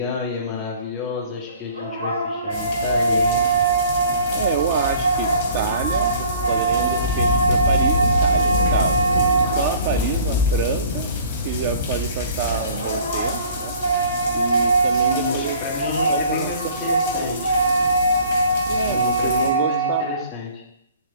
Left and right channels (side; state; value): both; inverted; correlation -0.52